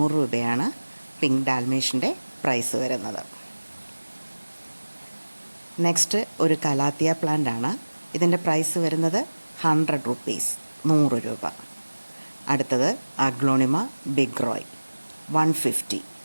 രൂപയാണ് പിങ്ക് ഡാൽമേഷൻ്റെ പ്രൈസ് വരുന്നത്. നെക്സ്റ്റ് ഒരു കലാത്തിയ പ്ലാന്റ് ആണ്. ഇതിൻ്റെ പ്രൈസ് വരുന്നത് 100 റുപ്പീസ് 100 രൂപ. അടുത്തത് അഗ്ലോണിമ ബിഗ് റോയ് 150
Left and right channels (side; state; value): both; inverted; correlation -1.00